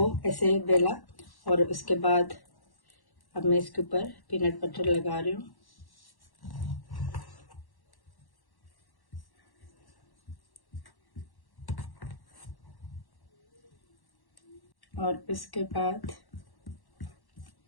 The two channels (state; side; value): late; right; 1.1 ms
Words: ऐसे बेला और उसके बाद अब मैं इसके ऊपर पीनट बटर लगा रही हूँ। और इसके बाद